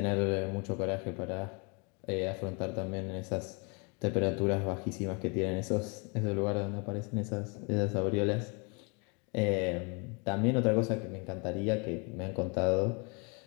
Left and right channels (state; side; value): quieter; right; 32.8 dB